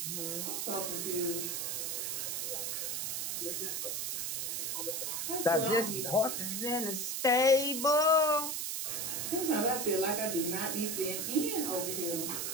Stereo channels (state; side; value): noise; right; hiss, 1 dB below the sound